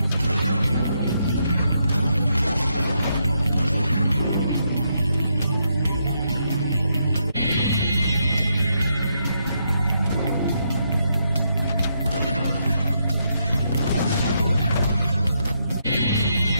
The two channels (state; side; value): inverted; both; correlation -0.79